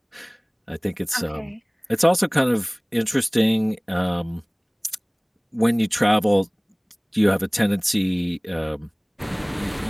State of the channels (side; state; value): both; identical; correlation 1.00